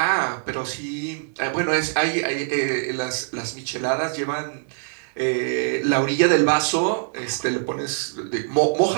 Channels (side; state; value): left; silent; digital silence